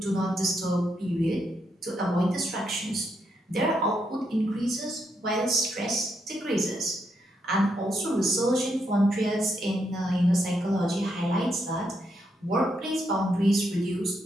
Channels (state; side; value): normal; both; correlation 0.79